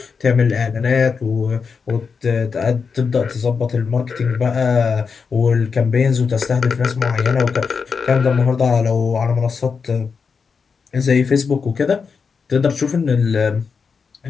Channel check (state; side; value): quieter; right; 5.5 dB